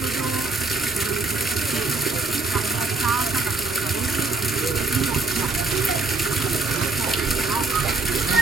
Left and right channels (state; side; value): quieter; left; 3.7 dB